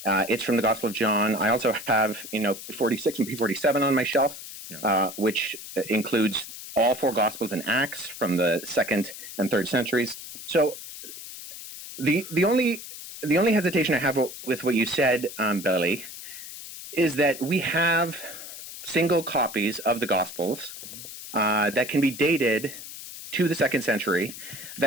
It's from the Gospel of John. I also have, P46 and P47 on my shelf, which includes all 4 Gospels and Acts from the 2nd and 3rd centuries. So the only hesitation I have with what you said, Billy, is that we have single copies of the Gospels that can be dated to the 2nd century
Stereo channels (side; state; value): left; noise; hiss, 12 dB below the sound